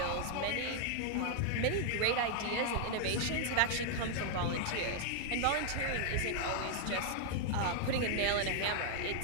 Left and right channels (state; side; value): different; both; correlation 0.00